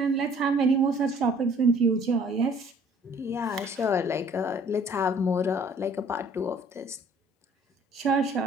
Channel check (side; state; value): both; normal; correlation 0.56